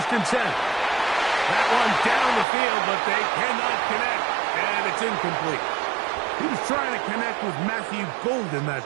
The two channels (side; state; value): left; drops out; at 2.5 s